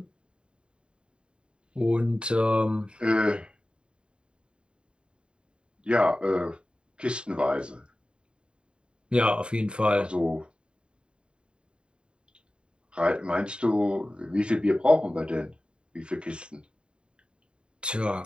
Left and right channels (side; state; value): left; late; 0.053 ms